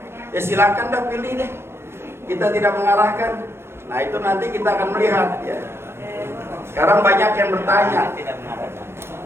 ya silakan dah pilih deh. Kita tidak mengarahkan. Nah itu nanti kita akan melihat. Ya. Sekarang banyak yang bertanya.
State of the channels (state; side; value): late; left; 0.12 ms